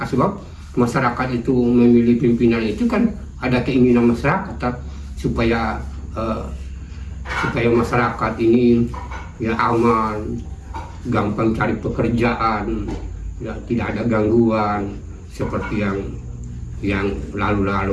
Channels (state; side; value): identical; both; correlation 1.00